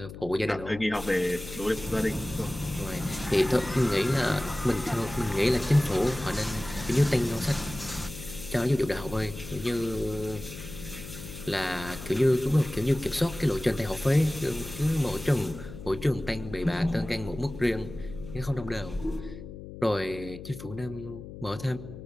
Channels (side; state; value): left; noise; hum, 13 dB below the sound